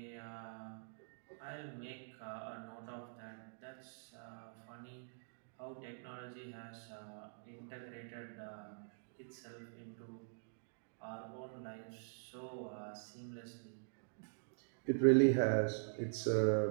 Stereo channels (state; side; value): silent; left; digital silence